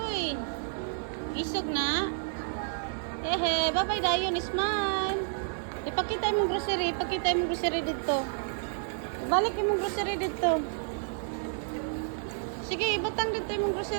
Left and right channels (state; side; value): silent; left; digital silence